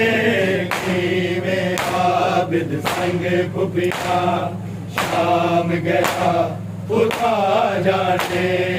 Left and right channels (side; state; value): both; identical; correlation 1.00